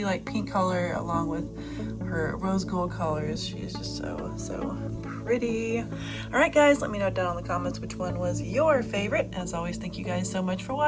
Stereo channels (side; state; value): both; identical; correlation 1.00